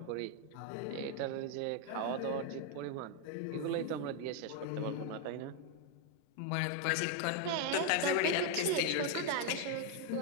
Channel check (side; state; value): both; different; correlation 0.01